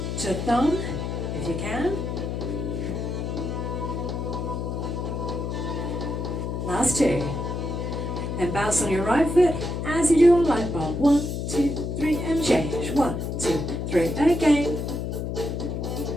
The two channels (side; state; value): left; noise; hum, 3 dB below the sound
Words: to thumb, if you can. Last 2. Then bounce on your right foot as you do on light bulb. 1, 2, 3, and change. 1, 2, 3, again.